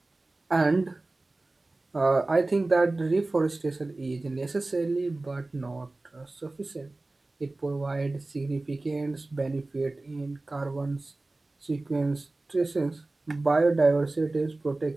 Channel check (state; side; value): quieter; left; 3.0 dB